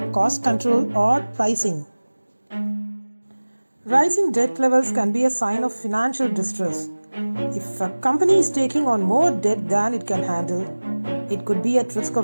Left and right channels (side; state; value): both; inverted; correlation -1.00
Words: cost control or pricing. Rising debt levels can be a sign of financial distress. If a company is taking on more debt than it can handle, it could be at risk